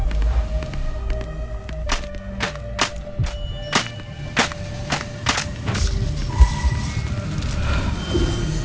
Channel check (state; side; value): identical; both; correlation 1.00